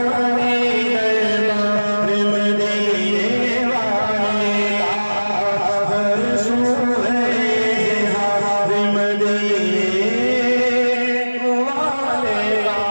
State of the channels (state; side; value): inverted; both; correlation -1.00